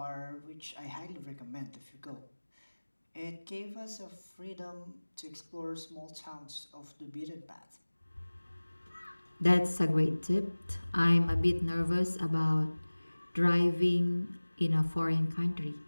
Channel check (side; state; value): both; inverted; correlation -1.00